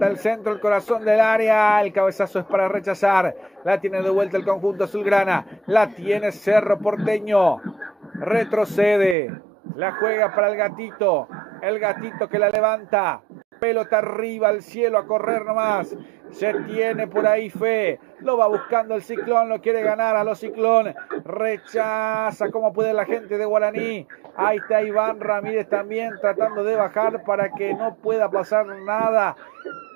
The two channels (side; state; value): left; drops out; at 9.2 s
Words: el centro, el corazón del área, el cabezazo es para rechazar, la tiene de vuelta el conjunto azulgrana, la tiene Cerro Porteño, retrocede, la juega para el gatito que la levanta, pelota arriba al cielo, a correr nomás, se tiene por ahí fe, lo va buscando el Ciclón, lo quiere ganar a los Ciclón, rechaza como puede la gente de Guaraní. Ahí está Iván Ramírez también tratando de bajar para que no pueda pasar nada